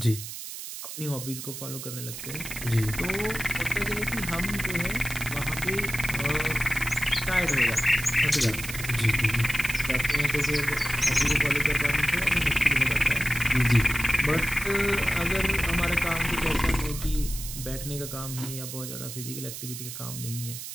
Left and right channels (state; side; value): noise; right; hiss, 9 dB below the sound